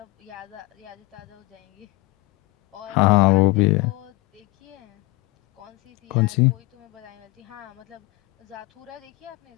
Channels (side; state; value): right; quieter; 22.1 dB